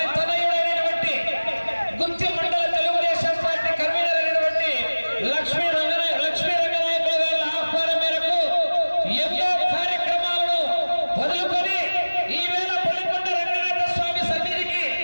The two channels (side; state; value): both; inverted; correlation -1.00